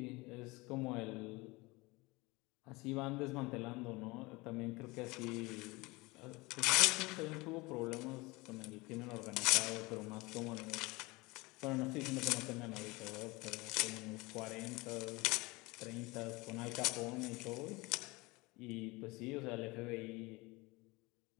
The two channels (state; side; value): quieter; right; 23.6 dB